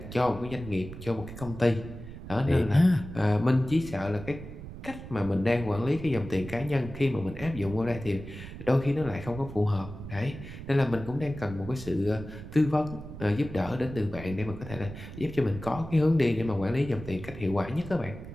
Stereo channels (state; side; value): noise; right; rumble, 12 dB below the sound